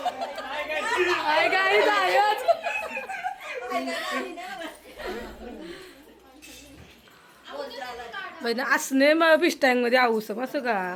असणे मग पिस्टँग मध्ये आऊस असं का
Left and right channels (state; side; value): identical; both; correlation 1.00